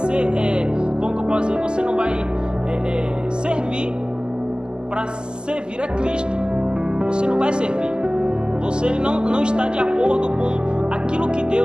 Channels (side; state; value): left; late; 0.047 ms